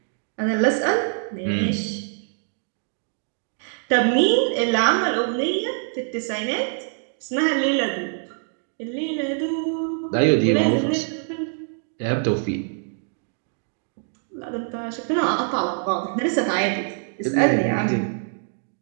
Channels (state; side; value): silent; left; 58 dB below the other